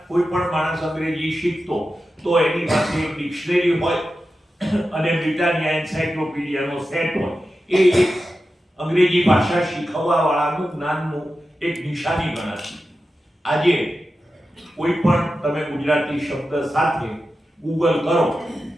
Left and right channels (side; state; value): both; normal; correlation 0.92